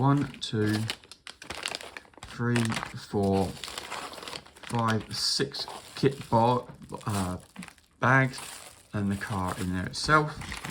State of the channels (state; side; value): identical; both; correlation 1.00